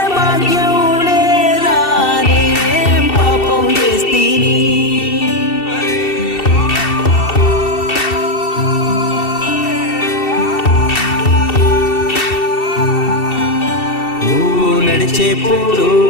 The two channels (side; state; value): right; late; 2.7 ms